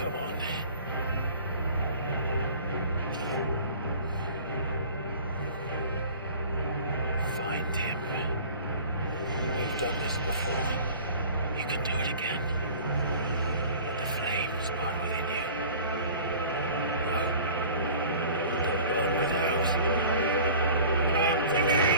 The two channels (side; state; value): both; inverted; correlation -0.44